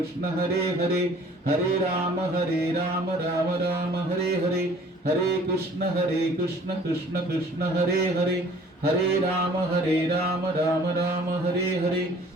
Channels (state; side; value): normal; both; correlation 0.53